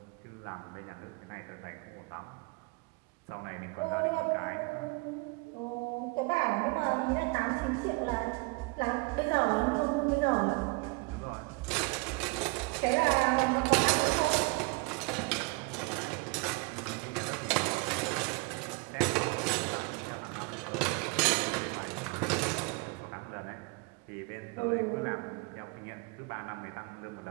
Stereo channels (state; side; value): quieter; left; 28.7 dB